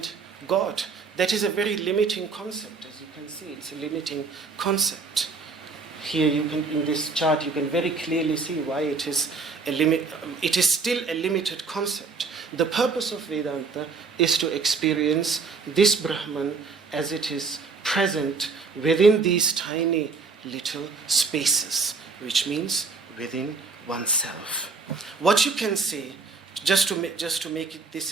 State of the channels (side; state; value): left; quieter; 4.5 dB